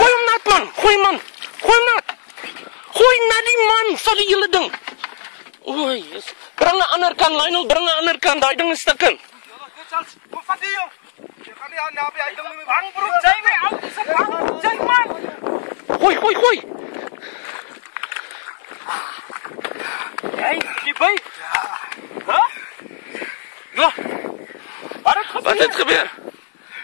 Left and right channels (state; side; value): silent; right; 58 dB below the other